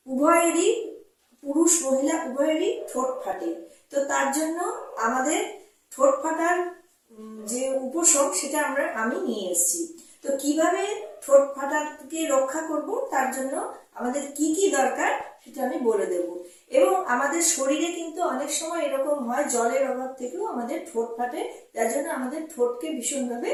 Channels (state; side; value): identical; both; correlation 1.00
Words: উভয়েরই, পুরুষ মহিলা উভয়েরই ঠোঁট ফাটে। তো তার জন্য আমাদের ঠোঁট ফাটার যে উপশম সেটা আমি নিয়ে এসেছি। তো কিভাবে ঠোঁট ফাটাকে রক্ষা করব, তার জন্য আমাদের কি কি দরকার সেটা আমি বলে দেব। এবং আমাদের শরীরে কিন্তু অনেক সময় এরকম হয়, জলের অভাব থেকেও আমাদের ঠোঁট ফাটে। যার জন্য আমাদের ঠোঁটকে ভীষণভাবে